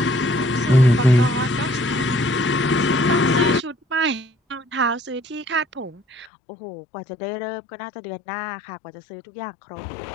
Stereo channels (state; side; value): drops out; right; at 6.3 s